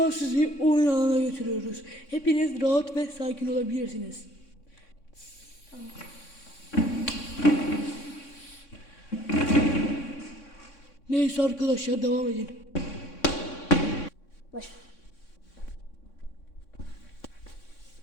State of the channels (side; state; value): right; late; 3.6 ms